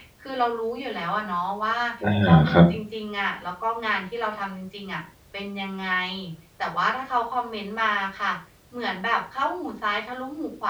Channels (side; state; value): both; identical; correlation 1.00